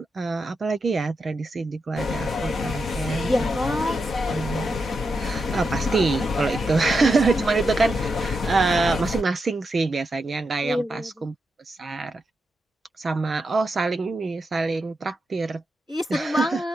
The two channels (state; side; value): normal; both; correlation 0.86